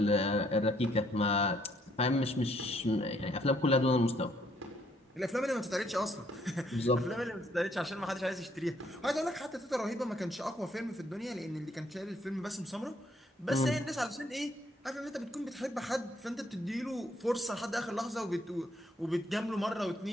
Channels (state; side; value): normal; both; correlation 0.69